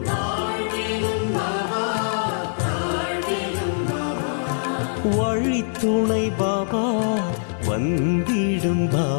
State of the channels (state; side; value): silent; right; digital silence